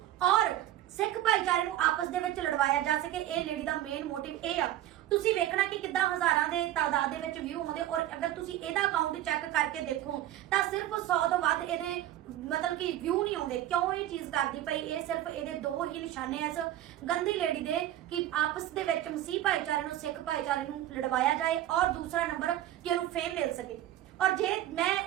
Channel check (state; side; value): quieter; left; 13.2 dB